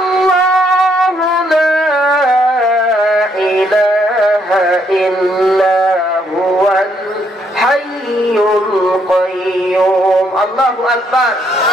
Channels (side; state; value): both; normal; correlation 0.72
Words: লা ইলাহা ইল্লা হুয়াল হাইয়ুল কাইয়্যুম। আল্লাহু আকবার।